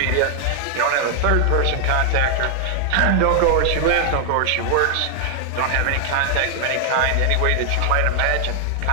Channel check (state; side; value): different; both; correlation 0.00